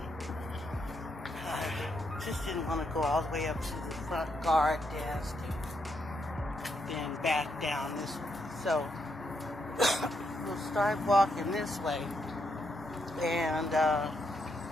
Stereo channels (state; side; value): normal; both; correlation 0.79